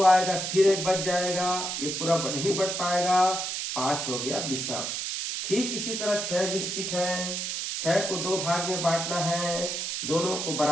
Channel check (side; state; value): right; noise; hiss, 3 dB below the sound